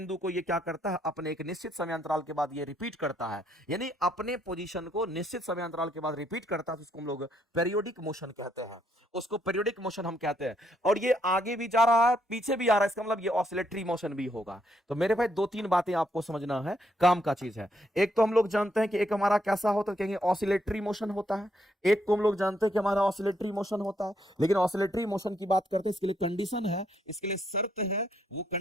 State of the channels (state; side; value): normal; both; correlation 0.74